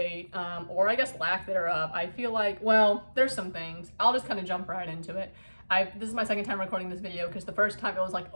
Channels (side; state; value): both; inverted; correlation -1.00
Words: or I guess lack thereof. I feel like, well, there's some things. I'll just kind of jump right into it. This is my second time recording this video because the first time it was like